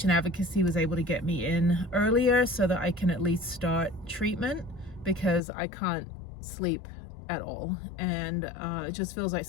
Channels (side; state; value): right; drops out; at 5.4 s